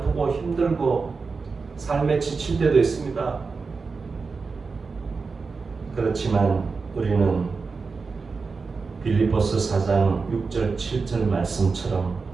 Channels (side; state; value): left; quieter; 4.6 dB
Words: 힘들고 삶에 지칠 때도 있습니다. 그렇지만 우리는 빌립보서 4장 6절 7절 말씀처럼